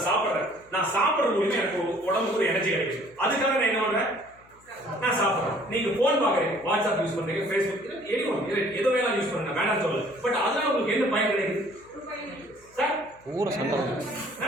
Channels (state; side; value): noise; left; hum, 29 dB below the sound